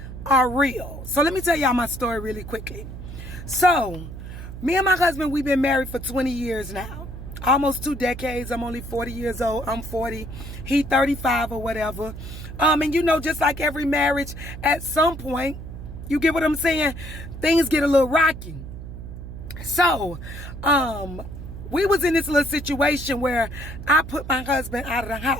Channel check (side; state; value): right; noise; hum, 11 dB below the sound